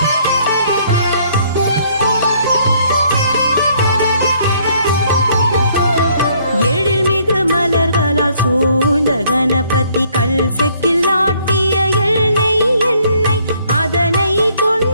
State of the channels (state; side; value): inverted; both; correlation -0.64